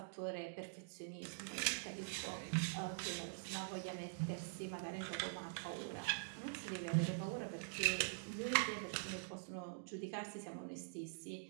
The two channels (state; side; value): silent; left; digital silence